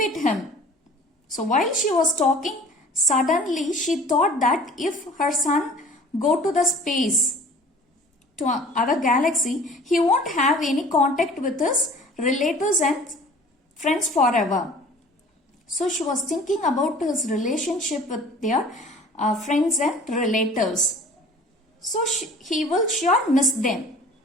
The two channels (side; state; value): both; normal; correlation 0.47